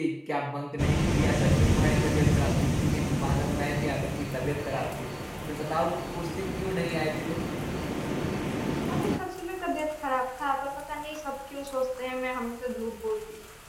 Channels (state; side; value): identical; both; correlation 1.00